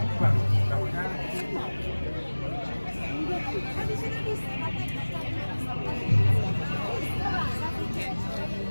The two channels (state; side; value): inverted; both; correlation -1.00